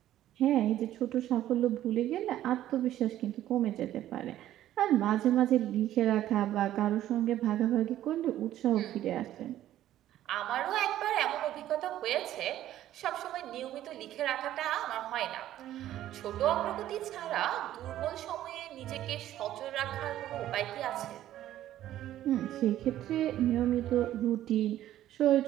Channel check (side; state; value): left; quieter; 12.9 dB